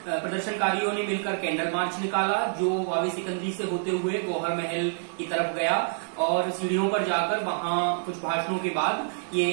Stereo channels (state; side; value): silent; left; digital silence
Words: प्रदर्शनकारियों ने मिलकर कैंडल मार्च निकाला, जो वावे सिकंदरी से होते हुए गौहर महल की तरफ गया और सीढ़ियों पर जाकर वहां कुछ भाषणों के बाद